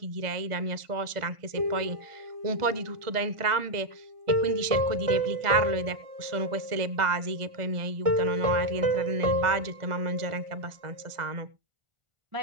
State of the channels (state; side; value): late; left; 1.4 ms